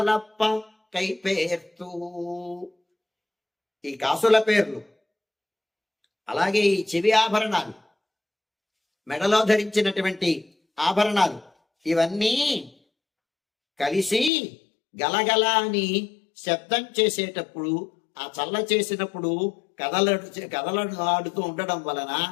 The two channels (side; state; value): right; drops out; at 14.3 s